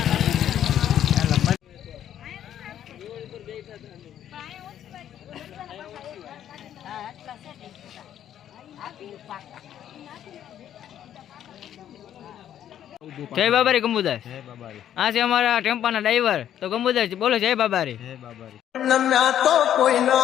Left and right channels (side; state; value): right; quieter; 10.6 dB